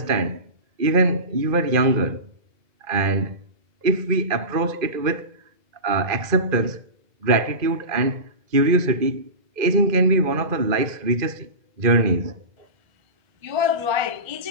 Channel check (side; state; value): left; late; 2.5 ms